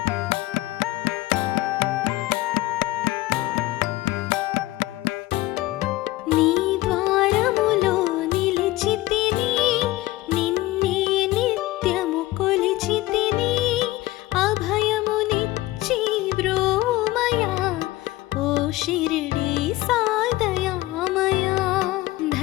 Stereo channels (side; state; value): right; quieter; 17.9 dB